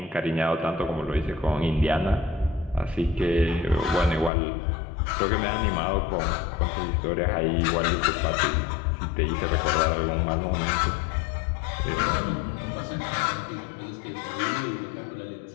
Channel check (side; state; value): right; drops out; at 4.3 s